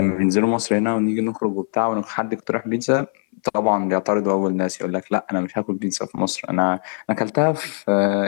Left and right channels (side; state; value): right; silent; 63 dB below the other